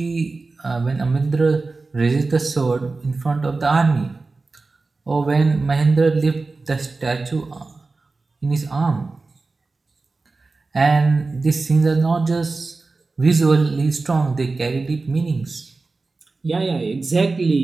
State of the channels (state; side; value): quieter; left; 3.7 dB